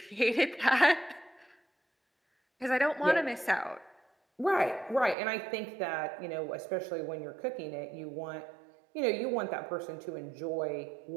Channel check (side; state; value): left; drops out; at 5.2 s